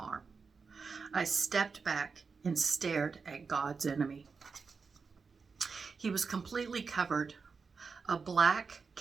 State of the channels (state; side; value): quieter; left; 5.0 dB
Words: I stepped back and stared at God's enemy. He was completely covered. A black